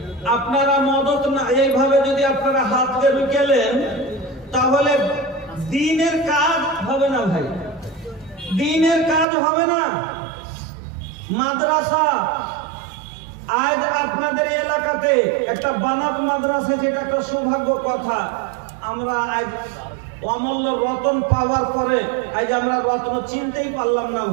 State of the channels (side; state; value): left; drops out; at 9.2 s